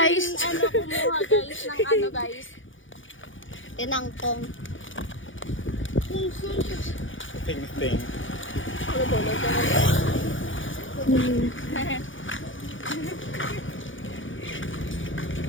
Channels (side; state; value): right; late; 0.57 ms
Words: Ano, kumuha guys ng ano guys. Tinangkong. Ting-ting.